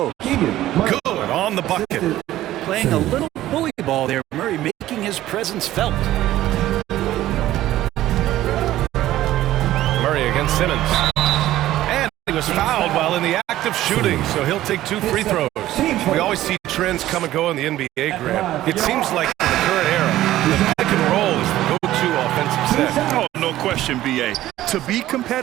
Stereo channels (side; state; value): left; quieter; 14.5 dB